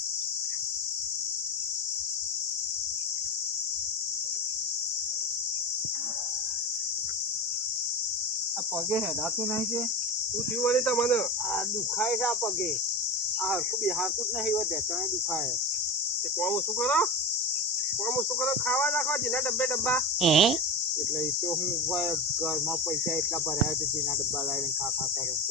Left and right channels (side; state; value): both; normal; correlation 0.23